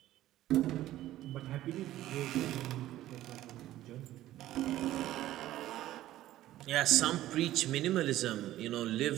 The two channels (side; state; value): left; quieter; 14.3 dB